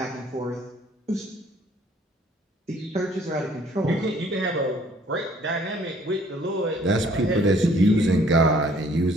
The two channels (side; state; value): both; normal; correlation 0.60